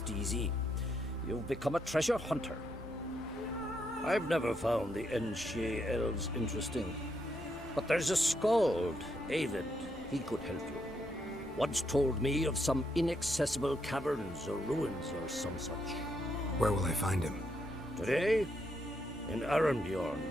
easy. You've become a treasure hunter. I've never found the Enshe elves interesting. But there's a skald, Eyvind. He could help you. Once told me of some inaccessible caverns or ruins or some such. Where will I find him? Today? In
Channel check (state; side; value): normal; both; correlation 0.78